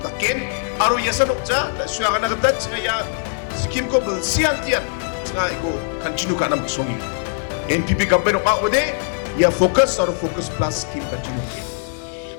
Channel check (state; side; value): silent; right; digital silence